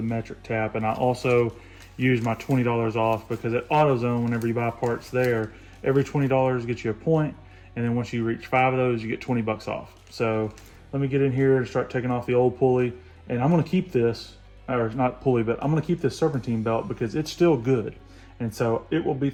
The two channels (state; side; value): identical; both; correlation 1.00